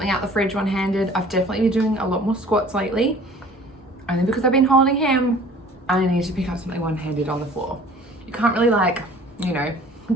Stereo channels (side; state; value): both; normal; correlation 0.49